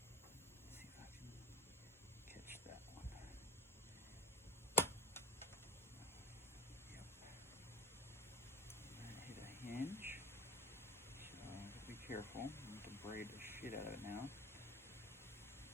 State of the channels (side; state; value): both; normal; correlation 0.36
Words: See if I can catch that one. Yep. And hit a hinge. So I have to be careful. I have to braid the shit out of it now.